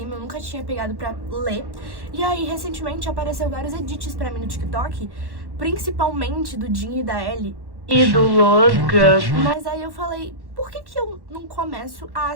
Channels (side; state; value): left; late; 1.1 ms